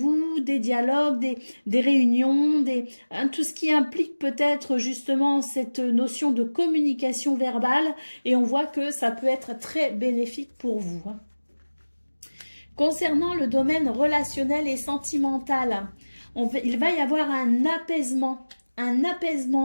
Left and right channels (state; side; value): inverted; both; correlation -1.00